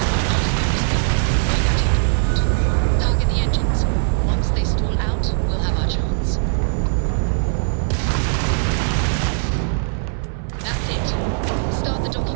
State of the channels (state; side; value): silent; left; 57 dB below the other